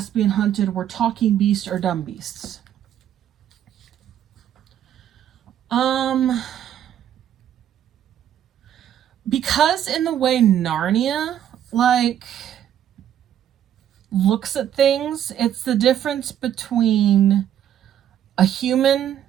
hunted were talking beasts or dumb beasts? Because in the way Narnia, looks at things, it's the difference between a human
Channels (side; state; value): left; quieter; 10.4 dB